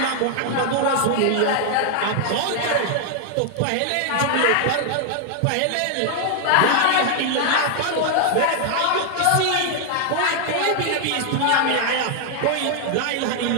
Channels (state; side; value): different; both; correlation 0.00